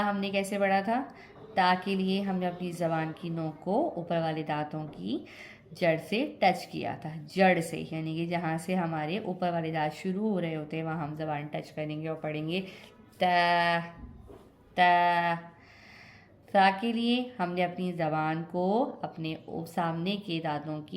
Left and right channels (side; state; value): both; identical; correlation 1.00